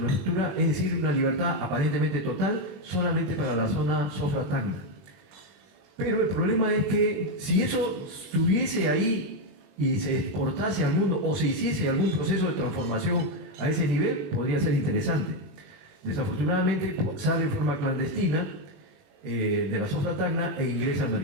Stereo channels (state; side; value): late; left; 21 ms